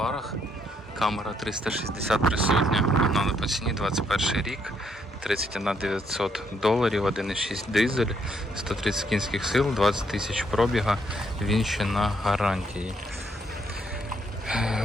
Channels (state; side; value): normal; both; correlation 0.72